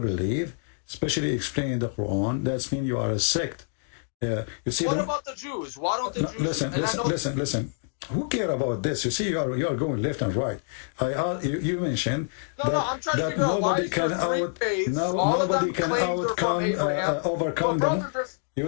especially explaining the Quran, that means you are a sect. You see. What about the Jews? Why don't the Jews? Listen. Who care about this? You see, you are going left and right. You mentioned that nobody can overcome them.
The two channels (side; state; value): right; silent; digital silence